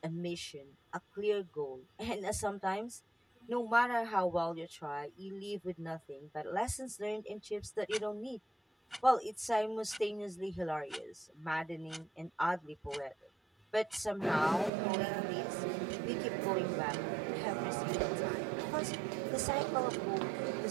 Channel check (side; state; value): left; drops out; at 14.7 s